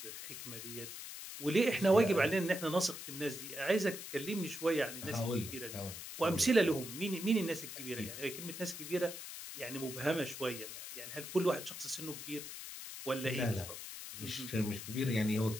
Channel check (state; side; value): noise; left; hiss, 9 dB below the sound